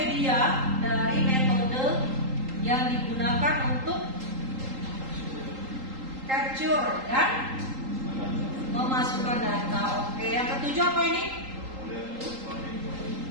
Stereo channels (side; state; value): left; late; 3.8 ms